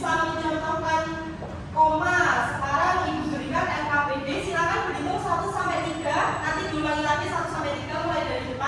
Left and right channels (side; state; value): both; identical; correlation 1.00